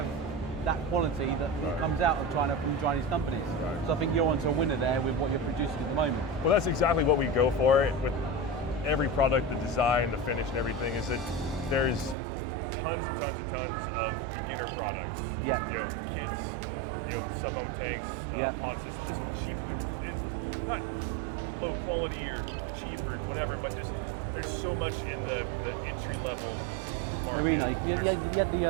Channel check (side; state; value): left; drops out; at 12.2 s